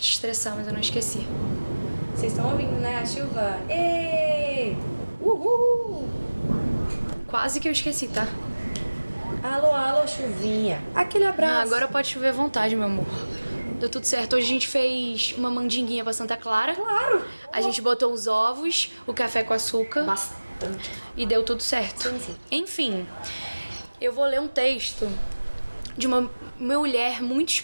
estressar, mas eu não esqueci. Vocês estão ouvindo, né? A chuva. Ê! Uhul! Quase que eu esqueci, tá? Alô, alô, chuvinha. Aquele abraço. Agora pode chover à vontade, meu amor. Deu tudo certo. Hoje a gente fez uma mandinguinha pra Santa Clara. Claro! A gente botou os ovos, o café com açúcar Bastante. e deu tudo certo. Sim, sim. Enfim, eu vou ler um texto de uma mulher muito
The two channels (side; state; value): both; inverted; correlation -1.00